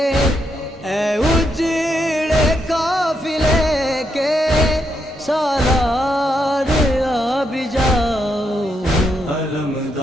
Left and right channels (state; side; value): normal; both; correlation 0.80